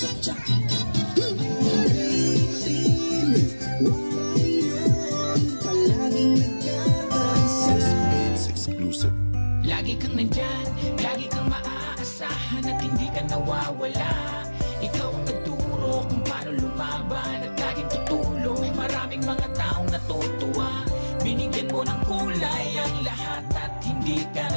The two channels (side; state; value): both; inverted; correlation -1.00